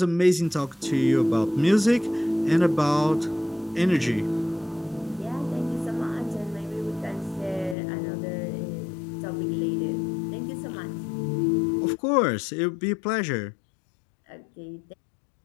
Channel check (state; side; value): drops out; right; at 7.8 s